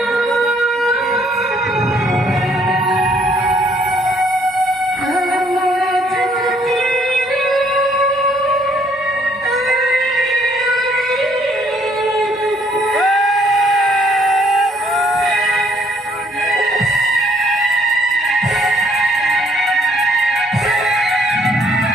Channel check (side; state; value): both; normal; correlation 0.66